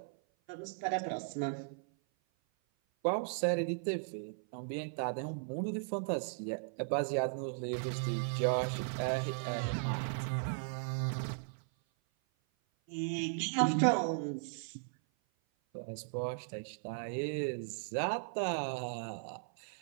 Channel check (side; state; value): left; silent; 53 dB below the other